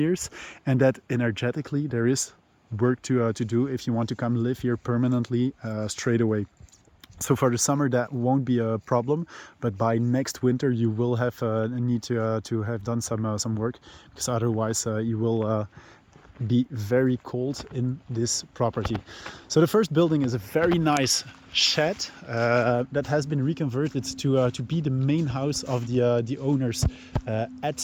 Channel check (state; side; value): identical; both; correlation 1.00